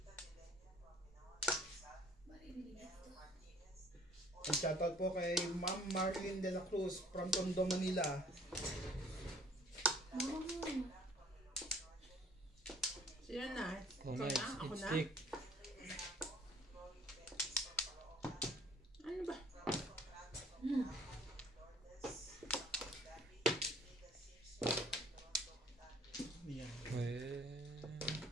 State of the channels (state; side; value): normal; both; correlation 0.55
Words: At shoutout po kay Ma'am Marlene de la Cruz from Tondo, Manila. Sino na? Oh, Ikaw nice. na? Ako It's na? thick. Ano ba? Yan. Siyempre.